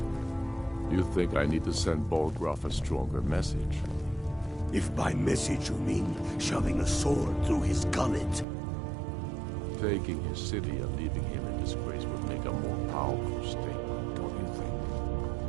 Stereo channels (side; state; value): left; drops out; at 8.5 s